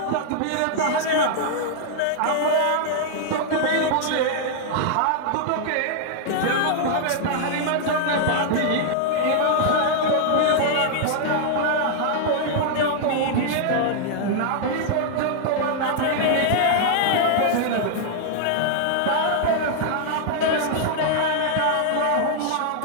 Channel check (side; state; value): both; different; correlation -0.01